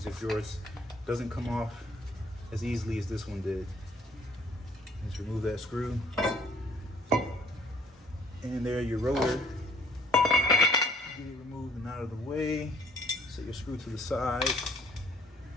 if yours doesn't come off as easily as this one did. Just remove that screw. And there, your rotor. Get it removed and out of the way. Set your screw to the side.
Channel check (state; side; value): normal; both; correlation 0.58